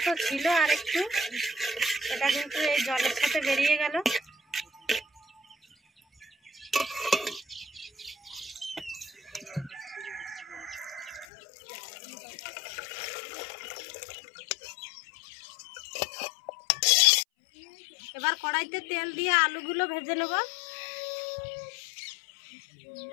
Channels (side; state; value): right; drops out; at 11.2 s